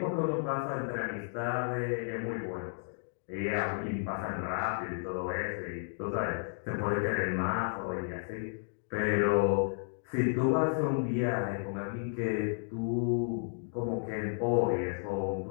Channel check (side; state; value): right; silent; digital silence